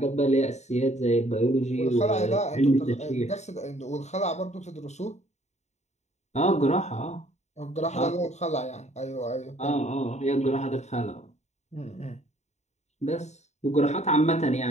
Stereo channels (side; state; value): right; late; 0.33 ms